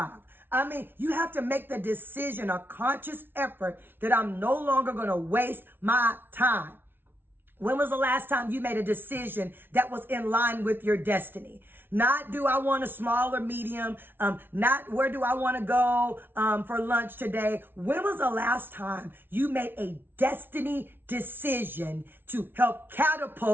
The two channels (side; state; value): left; late; 0.10 ms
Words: I mean, you have to make the decision, a conscious effort that I'm no longer going to waste my time. When was the last time you made a decision that was in line with your destiny? Not do I want a small or medium, not where do I want to go for lunch today. When was the last time you made a destiny decision to help